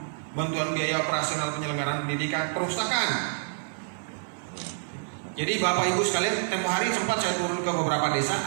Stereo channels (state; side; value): silent; left; digital silence